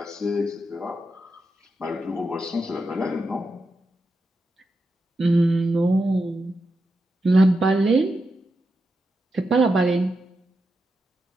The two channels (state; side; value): normal; both; correlation 0.87